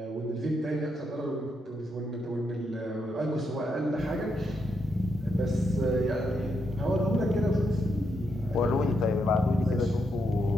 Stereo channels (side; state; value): both; normal; correlation 0.81